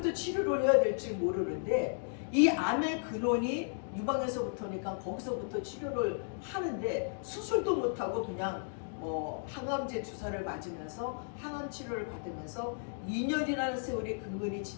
치료를 해야 될지 모르는데, 이 암의 근원이 유방에서부터니까 거기서부터 치료를 하는데 수술도 못하고 그냥 항암제 주사를 맞으면서 항암 치료를 받으면서 2년이라는 세월이 근근히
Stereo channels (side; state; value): right; silent; digital silence